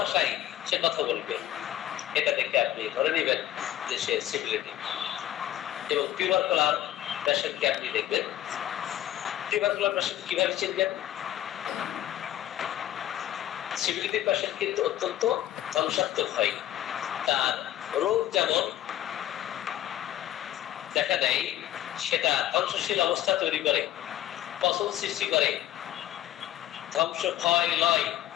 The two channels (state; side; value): quieter; right; 12.9 dB